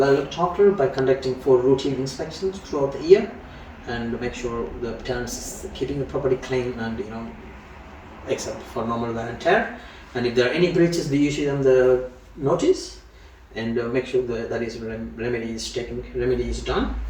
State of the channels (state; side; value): identical; both; correlation 1.00